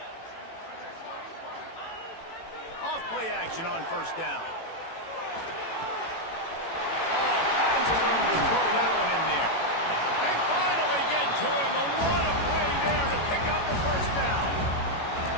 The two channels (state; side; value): late; right; 18 ms